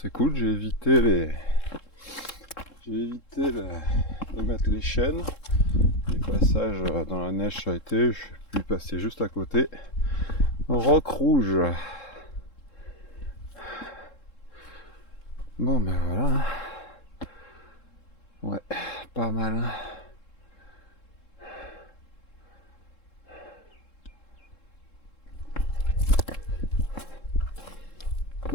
cool, j'ai évité de mettre les chaînes. Les passages dans la neige ça a été, je suis pu passer juste à côté. Roc rouge. Bon ben voilà. Ouais, pas mal.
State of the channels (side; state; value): right; late; 3.7 ms